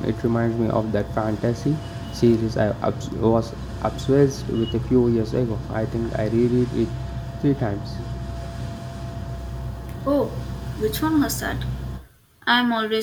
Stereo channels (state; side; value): identical; both; correlation 1.00